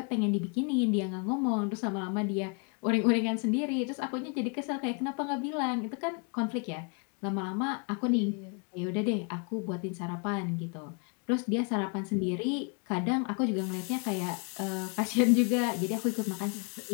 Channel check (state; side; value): quieter; right; 36.3 dB